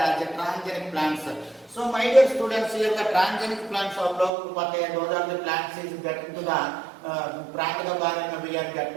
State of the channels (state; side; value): drops out; left; at 4.3 s